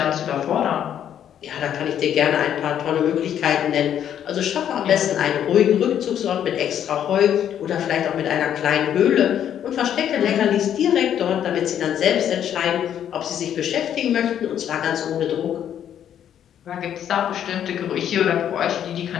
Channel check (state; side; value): quieter; right; 9.8 dB